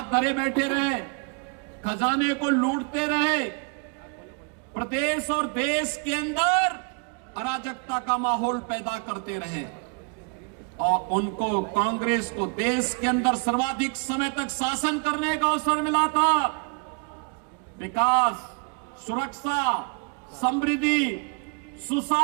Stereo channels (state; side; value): quieter; left; 36.8 dB